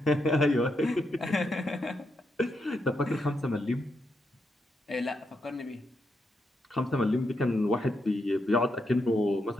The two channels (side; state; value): both; normal; correlation 0.82